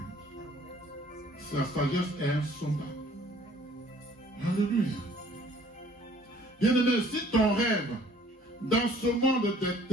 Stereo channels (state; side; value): normal; both; correlation 0.56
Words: Sa sagesse est insondable. Alléluia. Bien-aimé, si ton rêve dans ce monde des